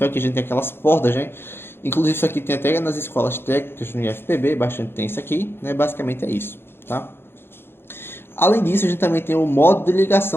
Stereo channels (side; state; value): right; late; 0.11 ms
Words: aqui a gente tem aquelas portas, né? Inclusive isso aqui tem até nas escolas técnicas no IFPB, bastante tem isso aqui, né? Basicamente é isso, tá? Além disso, a gente também tem o modo de